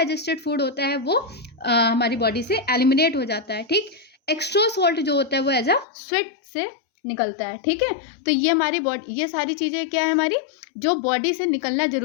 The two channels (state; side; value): drops out; right; at 5.9 s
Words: फूड होता है वो हमारी बॉडी से एलिमिनेट हो जाता है। ठीक, एक्स्ट्रा सॉल्ट जो होता है वो एज अ स्वेट से निकलता है। ठीक है, तो ये हमारी बॉडी, ये सारी चीज़ें क्या है हमारी जो बॉडी से निकलना